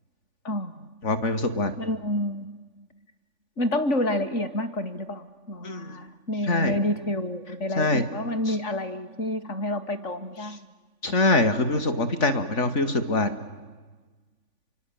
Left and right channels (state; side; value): late; right; 3.5 ms